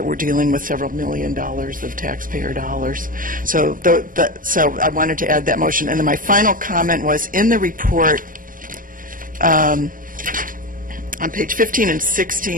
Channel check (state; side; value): late; left; 0.40 ms